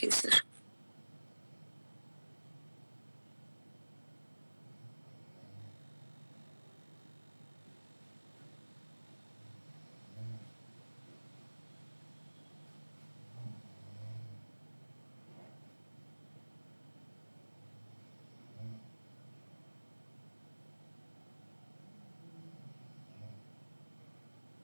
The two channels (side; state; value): both; inverted; correlation -1.00